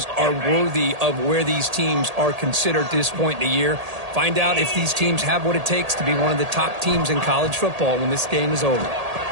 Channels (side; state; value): left; late; 1.8 ms